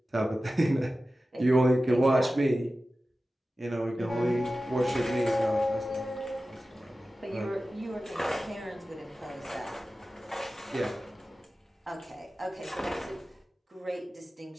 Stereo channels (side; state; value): both; normal; correlation 0.95